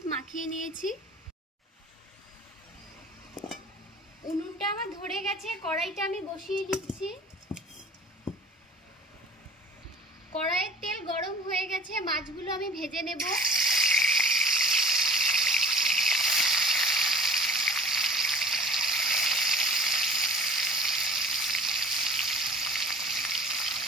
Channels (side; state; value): both; normal; correlation 0.45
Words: মাখিয়ে নিয়েছি। উনুনটা আমার ধরে গেছে, কড়াইটা আমি বসিয়ে দিচ্ছি। কড়াইয়ের তেল গরম হয়ে গেছে, মাছগুলো আমি ভেজে নেব।